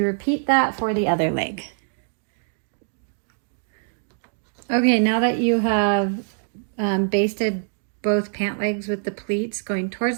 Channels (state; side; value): silent; left; digital silence